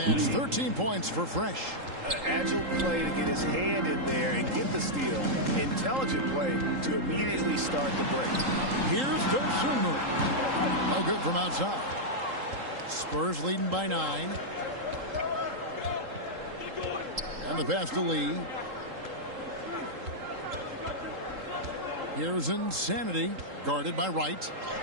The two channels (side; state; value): left; late; 3.8 ms